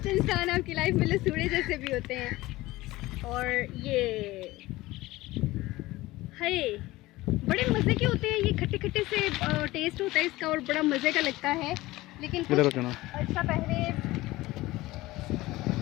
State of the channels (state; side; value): quieter; right; 18.7 dB